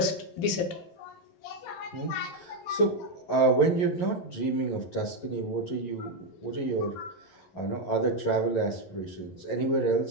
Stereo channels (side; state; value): right; late; 12 ms